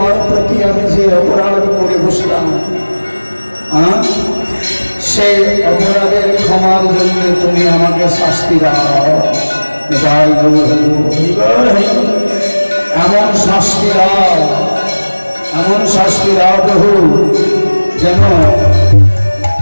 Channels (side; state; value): both; inverted; correlation -1.00